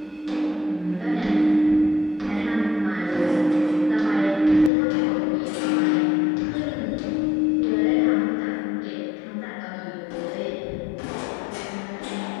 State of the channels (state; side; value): drops out; right; at 4.7 s